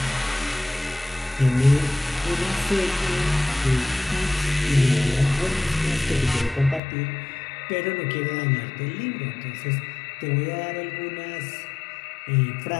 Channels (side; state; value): right; drops out; at 6.8 s